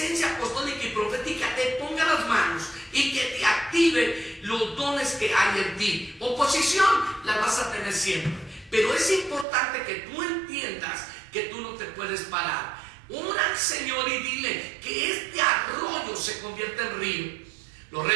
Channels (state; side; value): drops out; left; at 9.5 s